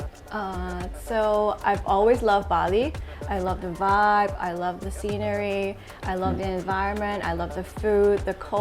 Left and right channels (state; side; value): identical; both; correlation 1.00